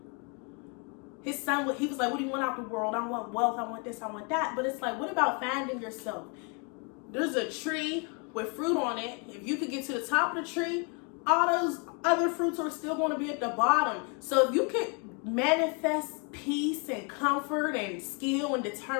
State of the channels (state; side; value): quieter; right; 34.9 dB